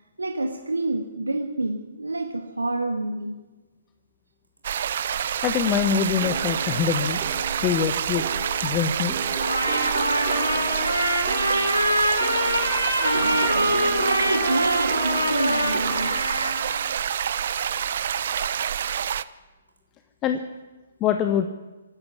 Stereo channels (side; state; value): both; inverted; correlation -0.59